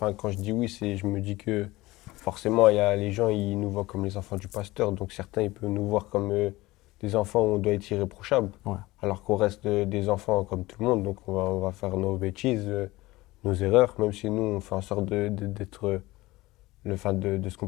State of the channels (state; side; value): quieter; right; 19.5 dB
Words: quand je dis oui, je me dis que forcément, il y a les gens, ils nous voient comme les enfants du pasteur. Donc certains, ils peuvent nous voir comme des enfants où on doit être irréprochable. Ouais. Alors qu'on reste des enfants comme tout le monde. Donc on va faire nos bêtises, nos erreurs, même si nous, on fait en sorte d'être, de se